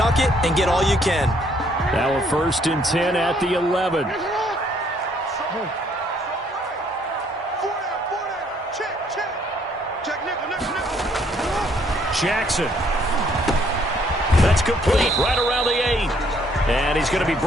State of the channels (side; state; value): both; normal; correlation 0.66